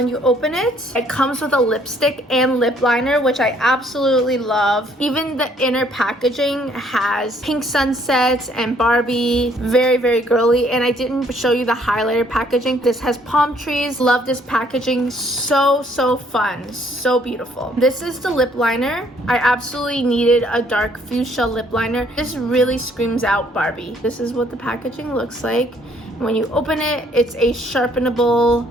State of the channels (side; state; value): both; normal; correlation 0.64